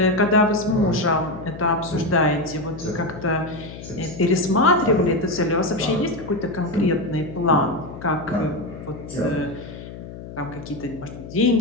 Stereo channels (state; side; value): noise; left; hum, 13 dB below the sound